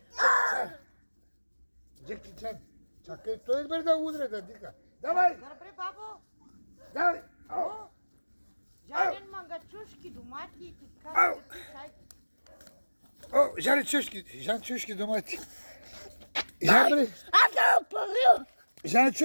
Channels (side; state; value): both; inverted; correlation -1.00